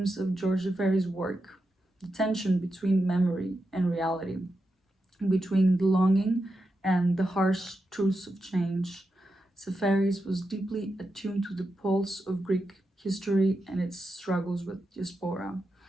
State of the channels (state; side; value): normal; both; correlation 0.88